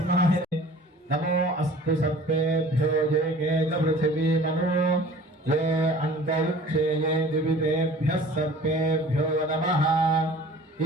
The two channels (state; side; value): normal; both; correlation 0.46